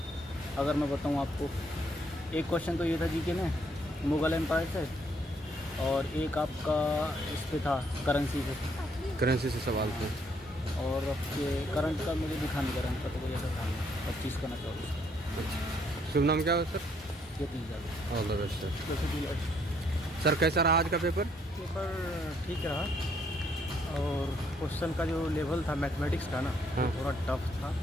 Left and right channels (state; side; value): normal; both; correlation 0.69